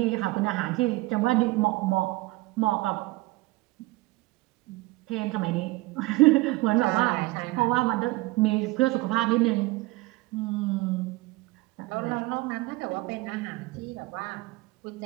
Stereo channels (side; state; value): left; quieter; 20.8 dB